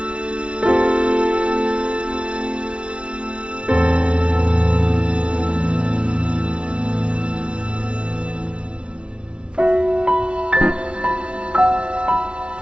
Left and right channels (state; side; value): late; left; 0.057 ms